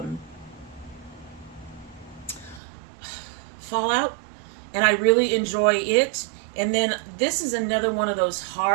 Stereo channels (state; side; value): drops out; left; at 2.6 s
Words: Fallout, and I really enjoy it. And then this is another one of those